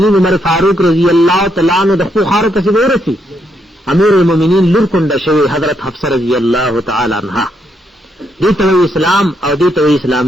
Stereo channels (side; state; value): both; normal; correlation 0.77